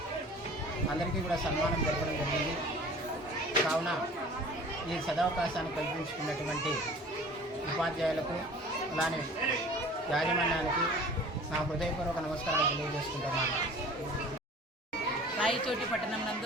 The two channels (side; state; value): both; normal; correlation 0.45